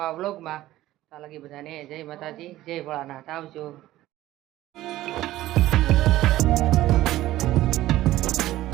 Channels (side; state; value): left; quieter; 15.4 dB